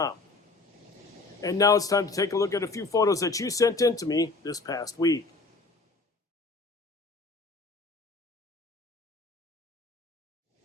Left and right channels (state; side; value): quieter; right; 3.6 dB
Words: And now it's time to take a look at a few photos that you sent in to me this past week.